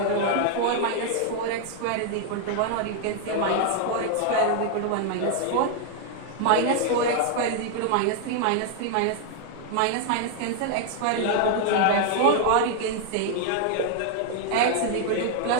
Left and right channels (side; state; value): both; different; correlation 0.00